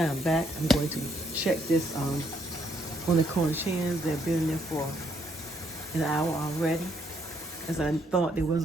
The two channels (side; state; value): both; normal; correlation 0.71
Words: am back. I'm going to check this on the Cornish hens. They've been in there for an hour already, as I thought they